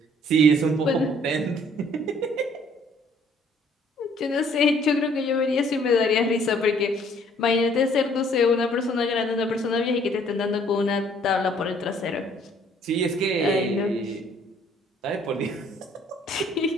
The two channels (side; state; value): both; normal; correlation 0.60